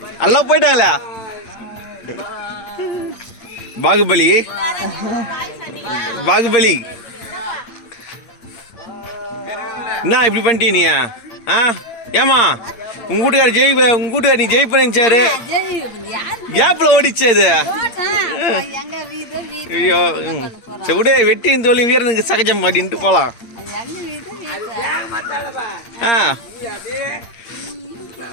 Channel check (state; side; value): late; right; 8.7 ms